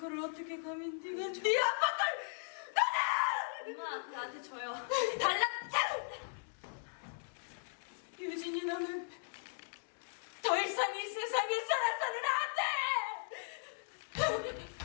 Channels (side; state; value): right; silent; digital silence